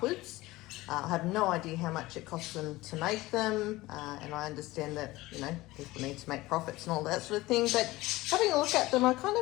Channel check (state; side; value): quieter; right; 19.1 dB